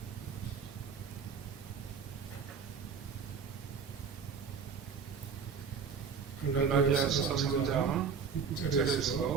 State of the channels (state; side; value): quieter; left; 6.1 dB